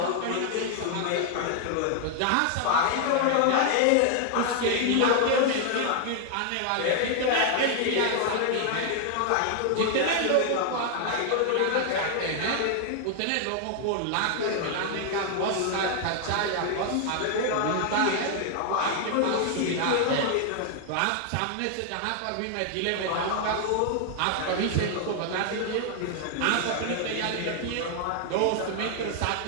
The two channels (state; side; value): different; both; correlation 0.00